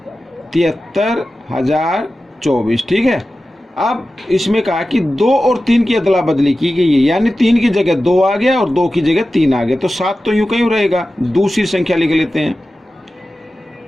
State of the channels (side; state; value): both; normal; correlation 0.94